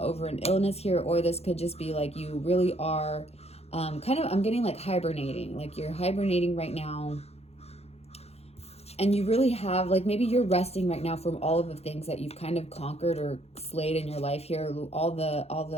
an illness here, or this could just be like you really are I'm getting like hibernating, like you're hibernating right now. And you really have, like, maybe you're resting right now from all of the things that you've kind of conquered or slayed in your life here, all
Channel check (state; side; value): late; right; 0.30 ms